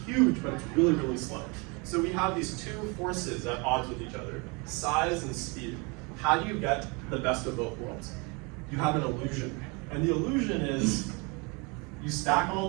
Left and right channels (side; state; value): left; quieter; 29.9 dB